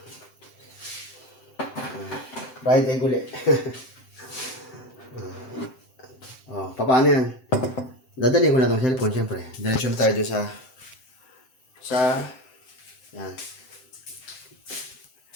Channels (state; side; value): late; right; 7.8 ms